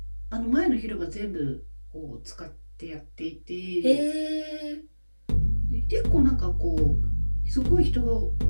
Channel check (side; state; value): both; inverted; correlation -1.00